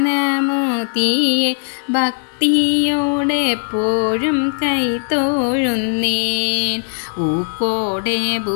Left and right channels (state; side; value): silent; right; 67 dB below the other